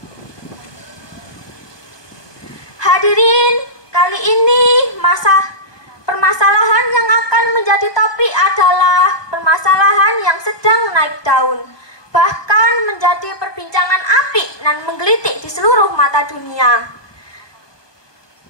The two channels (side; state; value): right; late; 1.2 ms